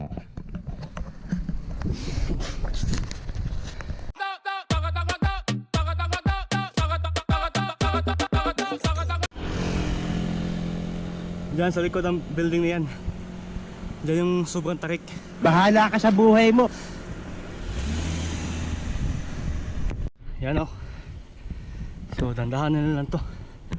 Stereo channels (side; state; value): both; identical; correlation 1.00